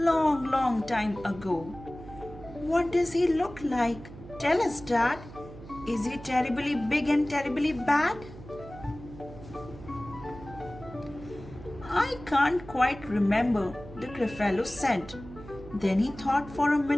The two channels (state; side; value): noise; right; hum, 16 dB below the sound